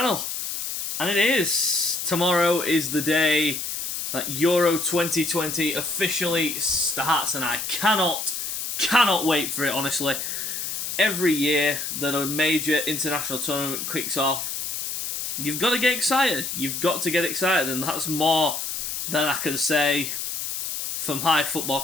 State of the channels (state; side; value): noise; left; hiss, 4 dB below the sound